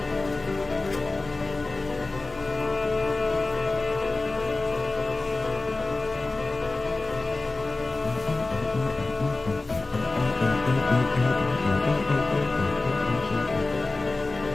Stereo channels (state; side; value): quieter; right; 3.3 dB